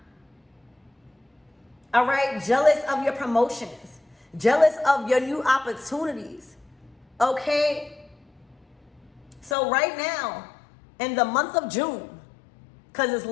All right, jealous of your promotions, jealous of your new opportunities. Okay, so right now, in the month of June, because it's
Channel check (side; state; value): right; drops out; at 9.6 s